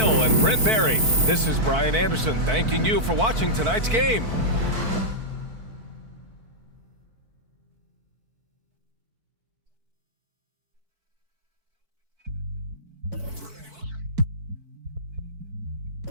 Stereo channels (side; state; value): left; late; 4.5 ms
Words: and Brent Barry, this is Brian Anderson thanking you for watching tonight's game.